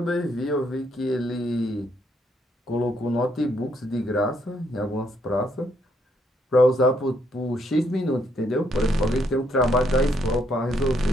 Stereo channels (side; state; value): both; normal; correlation 0.73